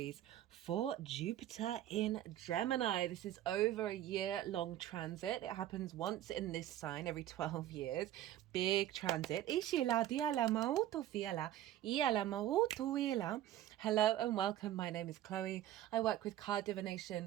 for Jupiter in Gemini. This is over a year-long transit. It happens once in this sign every 12 years. Big transit. Hello and welcome. My name is Chloe. I work with card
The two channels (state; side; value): quieter; left; 12.8 dB